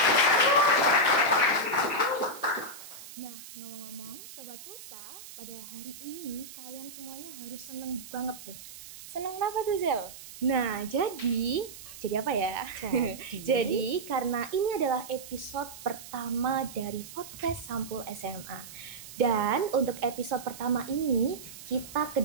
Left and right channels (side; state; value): right; noise; hiss, 15 dB below the sound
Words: Nah, ngomong-ngomong, Sobat Pulsa, pada hari ini kalian semuanya harus seneng banget nih. Seneng apa tuh, Zel? Nah, jadi apa ya? Jadi karena ini adalah episode pertama dari podcast Sampul SMA. Dan untuk episode pertama ini kita